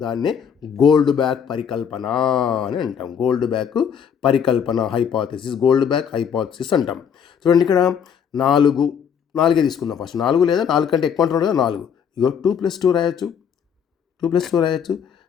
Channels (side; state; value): right; quieter; 7.6 dB